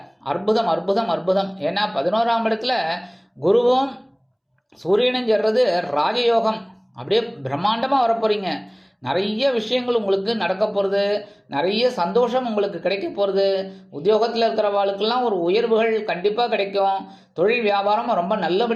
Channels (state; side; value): identical; both; correlation 1.00